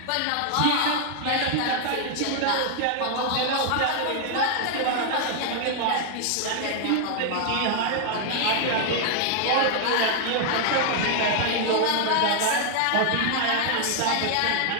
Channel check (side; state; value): both; different; correlation 0.00